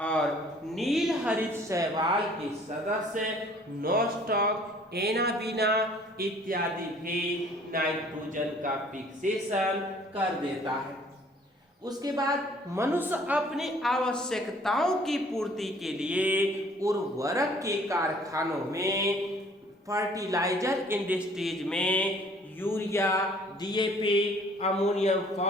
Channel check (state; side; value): normal; both; correlation 0.55